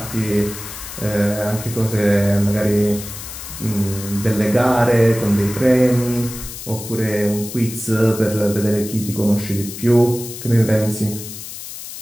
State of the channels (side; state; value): left; noise; hiss, 11 dB below the sound